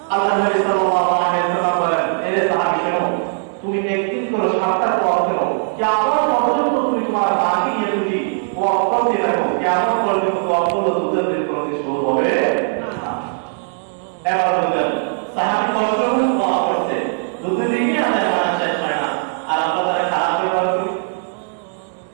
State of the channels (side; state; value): left; silent; digital silence